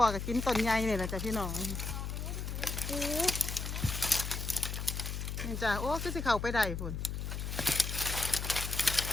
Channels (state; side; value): noise; left; hum, 4 dB below the sound